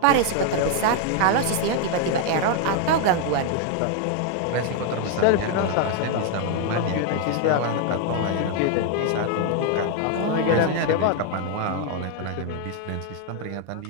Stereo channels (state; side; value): different; both; correlation 0.00